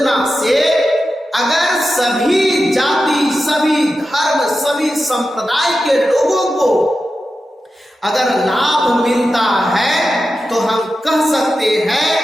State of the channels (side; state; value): both; normal; correlation 0.91